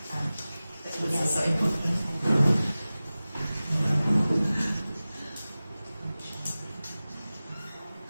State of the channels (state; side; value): inverted; both; correlation -0.97